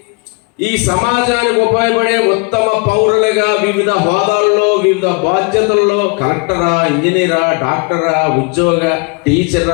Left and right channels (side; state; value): right; quieter; 32.3 dB